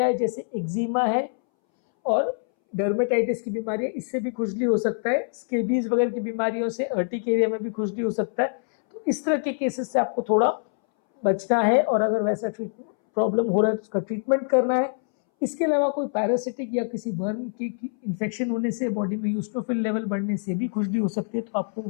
हैं जैसे एक्जिमा है और डर्मेटाइटिस की बीमारी है, इससे भी खुजली हो सकता है। स्केबीज वगैरह की बीमारियों से अर्टिक एरिया में भी खुजली हो सकता है। तो इस तरह के केसेस से आपको थोड़ा बचना है और अगर वैसा प्रॉब्लम हो रहा है तो उसका ट्रीटमेंट करना है। इसके अलावा कोई पैरासिटिक या किसी वर्म की इन्फेक्शन होने से, बॉडी में यूस्टोफिल लेवल बढ़ने से भी खुजली हो सकती है, तो आपको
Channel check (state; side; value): silent; right; 62 dB below the other